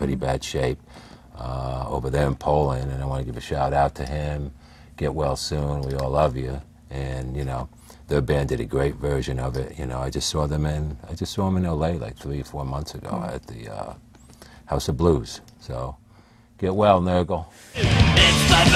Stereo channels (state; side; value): identical; both; correlation 1.00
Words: bad shape over there in Poland, and I want to give a shout out to him. Get well soon, we all love you. And, you know, their band did a great version of it. You know, I just saw them in LA like 3 or 4 months ago at the House of Blues. So, get well, Nurgle. It's the